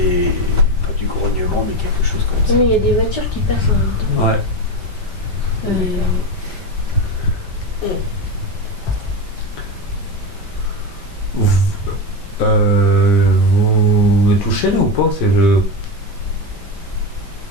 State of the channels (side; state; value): right; late; 5.1 ms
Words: Pas du grognement, mais quelque chose comme ça. Non, mais il y a des voitures qui passent en même temps. Ouais. Vous êtes touché là ou pas?